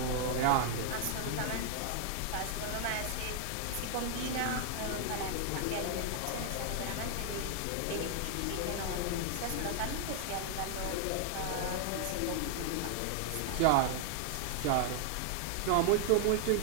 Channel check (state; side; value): different; both; correlation 0.00